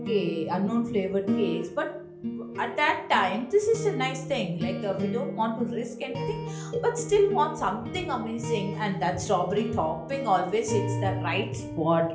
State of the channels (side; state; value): both; identical; correlation 1.00